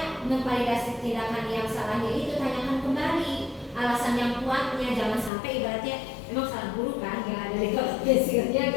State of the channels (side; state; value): right; drops out; at 5.3 s